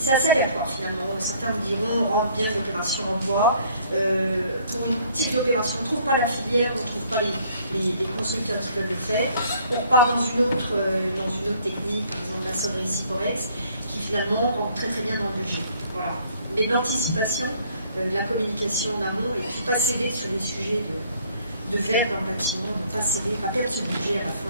assez aléatoire finalement. Certains vous diront on rentre bien l'opération en bois, pour une type d'opération on ne trouve pas la filière, on ne trouve pas les constructeurs qui peuvent le faire, on repart dans une autre technique, par exemple la sonnerie Ciporex, qui finalement rentre très très bien dans le budget. Voilà. Mais de l'anticipation, la communication en amont, et puis pas céder sur les sujets de verre dans le bâtiment, ne pas céder, pas perdre ce budget à la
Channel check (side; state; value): both; inverted; correlation -0.59